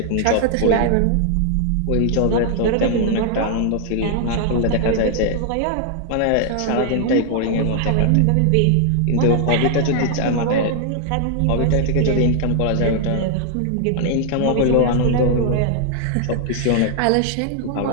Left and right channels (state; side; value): different; both; correlation 0.00